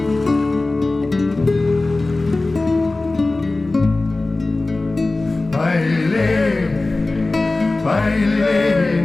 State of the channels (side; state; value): right; quieter; 3.1 dB